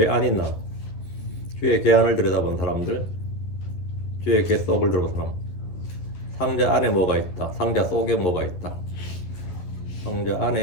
안이 나. 주의 궤 안을 들여다본 사람들, 주의 궤 속을 들여다본 사람. 상자 안에 뭐가 있다, 상자 속에 뭐가 있다. 상자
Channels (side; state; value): right; late; 11 ms